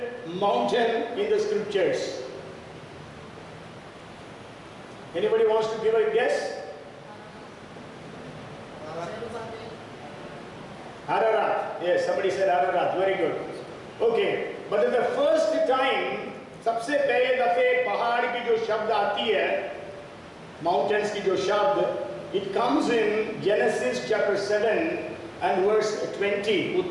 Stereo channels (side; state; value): both; identical; correlation 1.00